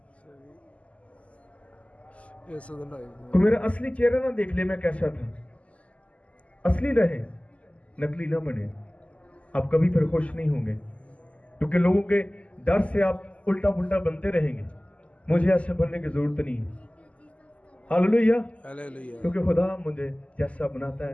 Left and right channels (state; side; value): late; right; 0.065 ms